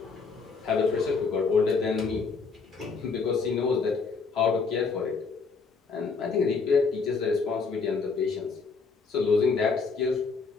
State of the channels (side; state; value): right; quieter; 4.8 dB